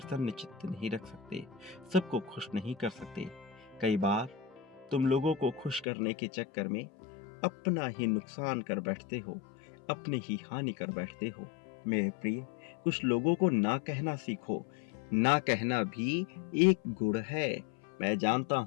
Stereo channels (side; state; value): right; drops out; at 5.9 s